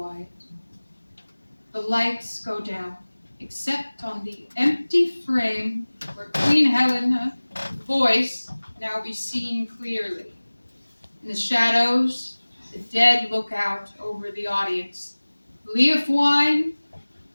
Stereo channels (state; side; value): inverted; both; correlation -1.00